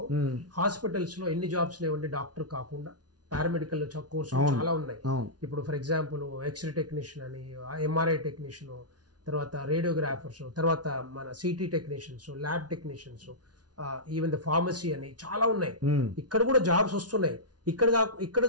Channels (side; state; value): left; late; 0.69 ms